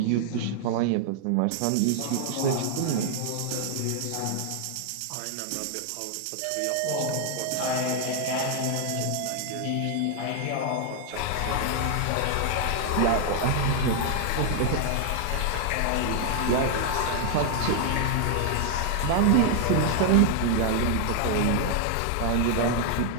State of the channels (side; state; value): both; different; correlation 0.00